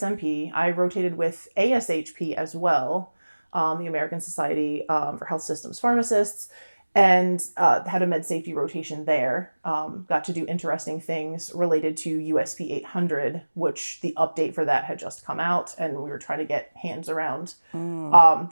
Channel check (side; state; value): both; inverted; correlation -1.00